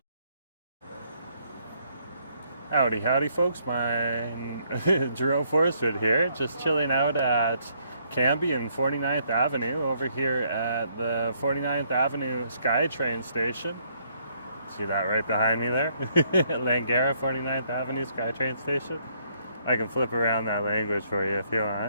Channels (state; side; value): inverted; both; correlation -0.70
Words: Howdy, howdy, folks. Jerome Forestwood here, just chilling out at Cambie and 49th Avenue over here at the 49th Avenue SkyTrain station. See that right behind me there? Langara 49th Avenue SkyTrain station. I can flip around that language for you if you